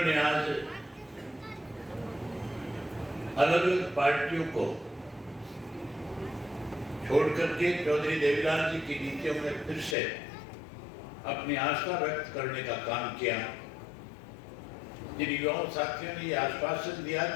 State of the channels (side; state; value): right; drops out; at 10.0 s